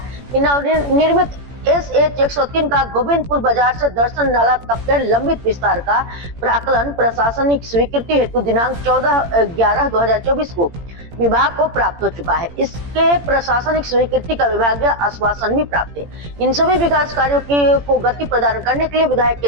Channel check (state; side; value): late; left; 17 ms